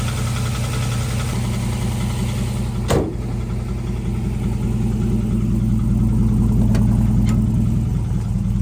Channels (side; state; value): both; identical; correlation 1.00